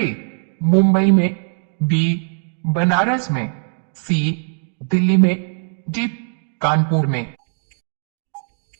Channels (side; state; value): left; silent; 58 dB below the other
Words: मुंबई में, बी बनारस में, सी दिल्ली में, डी कानपुर में।